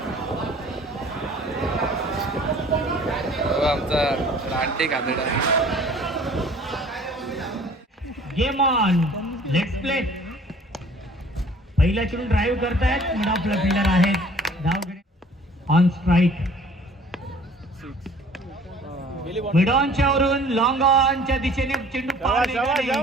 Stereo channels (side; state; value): both; normal; correlation 0.51